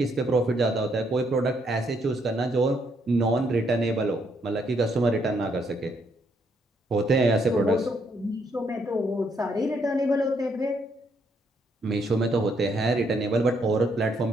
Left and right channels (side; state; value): both; normal; correlation 0.73